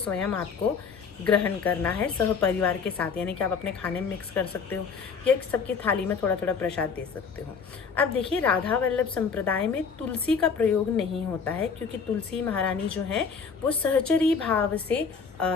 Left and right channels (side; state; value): right; quieter; 5.7 dB